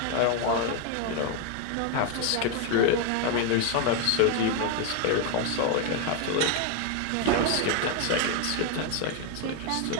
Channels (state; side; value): different; both; correlation 0.01